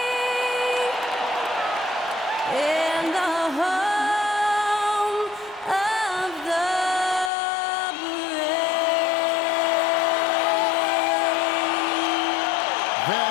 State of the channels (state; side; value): drops out; right; at 7.3 s